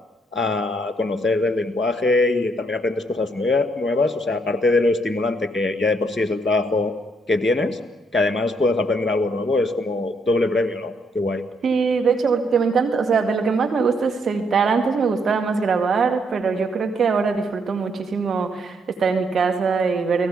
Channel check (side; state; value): both; normal; correlation 0.72